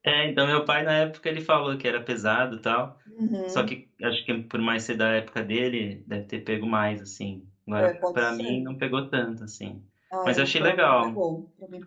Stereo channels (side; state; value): both; identical; correlation 1.00